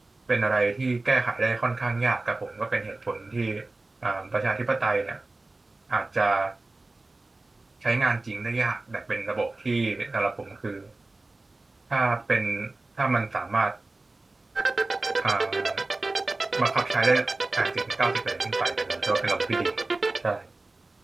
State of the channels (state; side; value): quieter; left; 3.1 dB